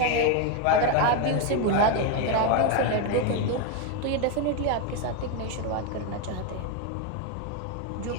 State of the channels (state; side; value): different; both; correlation 0.02